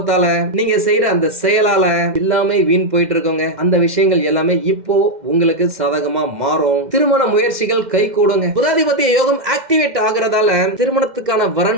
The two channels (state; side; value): late; left; 2.1 ms